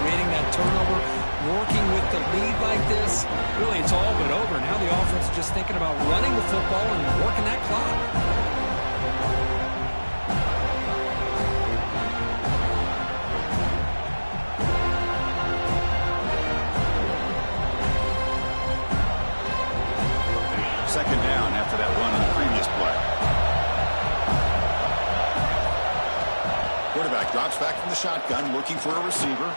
that turnover, working with the lead like this. Really, it's all but over. Now the offense is just thinking about running the football and working that clock. Second down after that run on the previous play. Quarterback drops back from the shotgun, looking for a receiver.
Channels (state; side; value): inverted; both; correlation -1.00